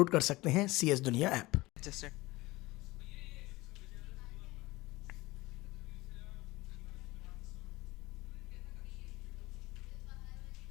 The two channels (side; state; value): right; quieter; 20.4 dB